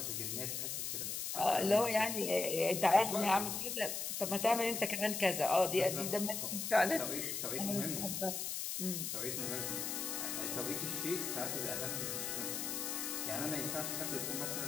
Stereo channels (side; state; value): left; noise; hiss, 3 dB below the sound